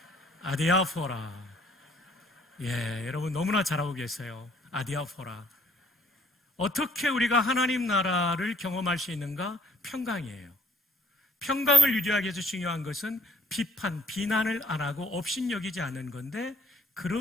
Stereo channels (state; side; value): normal; both; correlation 0.63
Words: 아디아포라. 예, 여러분 너무나 잘하고 계세요. 아디아포라. 어떻게 우리가 하나님 나라를 경험할 수 있는가? 평강이에요. 평강을 유지하기 위해서 중요한 것은 비판, 비난을 안 하고 업신여기지 않는 건데,